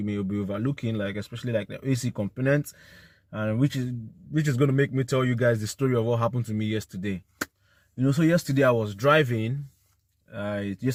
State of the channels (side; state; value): both; identical; correlation 1.00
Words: may be overlooking, like especially like the AC components, and which is going to make me tell you guys the story of what happened to me yesterday. So yesterday I was driving.